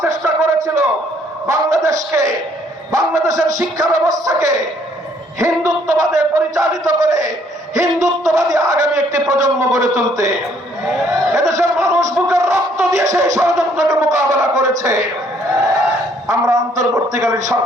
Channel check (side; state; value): both; normal; correlation 0.65